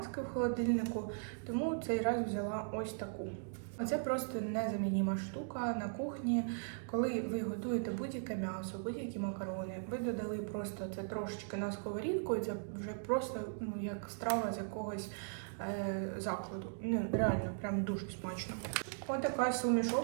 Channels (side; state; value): left; silent; digital silence